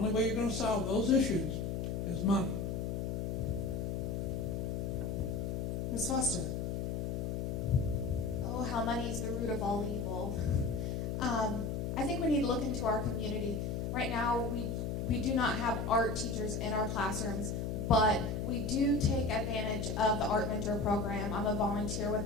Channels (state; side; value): noise; left; hum, 1 dB below the sound